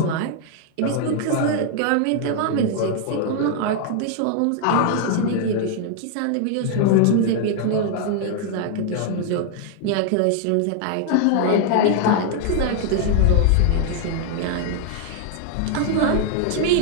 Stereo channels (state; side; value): different; both; correlation 0.00